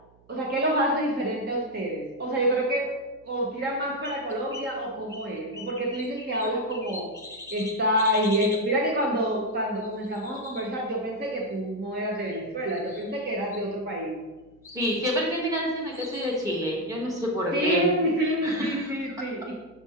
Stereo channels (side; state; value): right; noise; hum, 30 dB below the sound